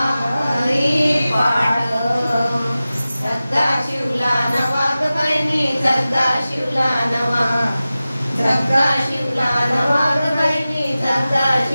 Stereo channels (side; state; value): both; inverted; correlation -0.96